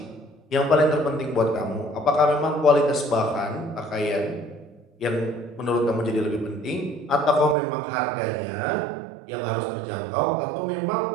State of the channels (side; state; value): left; drops out; at 7.6 s